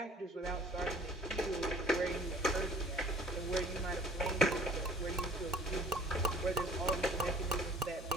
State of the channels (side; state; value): both; normal; correlation 0.52